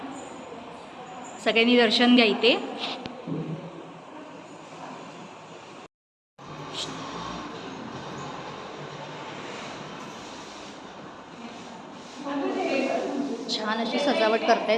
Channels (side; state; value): both; identical; correlation 1.00